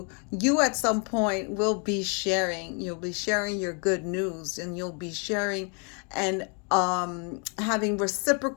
you at some point will be sharing. You'll be sharing your good news, and you'll be sharing and having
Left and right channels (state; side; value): quieter; right; 37.5 dB